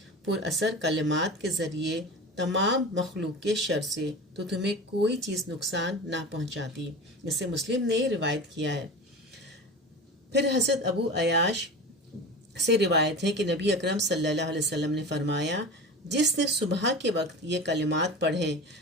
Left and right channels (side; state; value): both; normal; correlation 0.31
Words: پر اثر کلمات کے ذریعے تمام مخلوق کے شر سے، تو تمہیں کوئی چیز نقصان نہ پہنچاتی۔ جسے مسلم نے روایت کیا ہے۔ پھر حضرت ابو عیاش سے روایت ہے کہ نبی اکرم صلی اللہ علیہ وسلم نے فرمایا، جس نے صبح کے وقت یہ کلمات پڑھے،